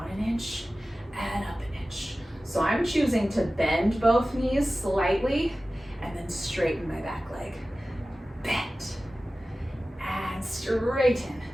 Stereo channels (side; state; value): both; normal; correlation 0.96